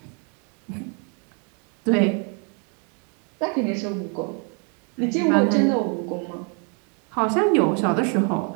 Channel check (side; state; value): left; quieter; 38.2 dB